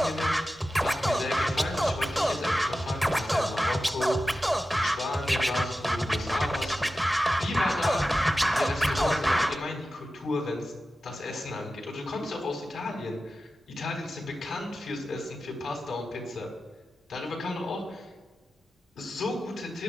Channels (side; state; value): both; normal; correlation 0.93